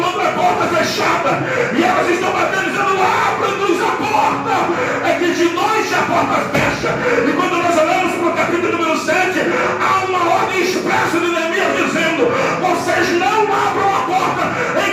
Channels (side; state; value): both; identical; correlation 1.00